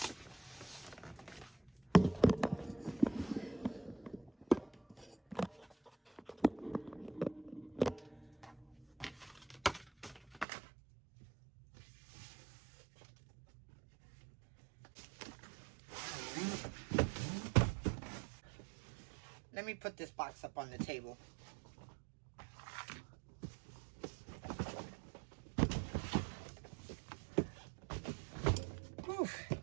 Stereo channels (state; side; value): drops out; left; at 10.5 s